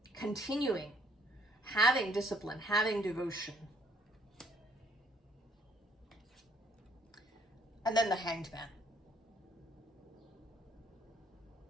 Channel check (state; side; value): normal; both; correlation 0.63